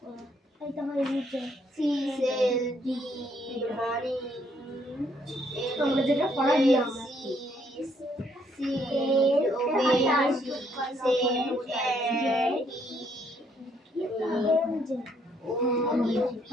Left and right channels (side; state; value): both; normal; correlation 0.69